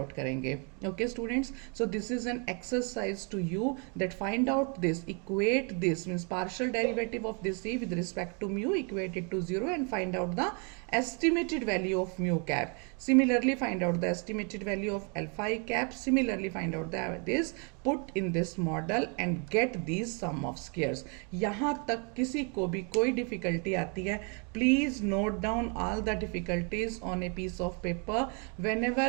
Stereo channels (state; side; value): quieter; left; 35.8 dB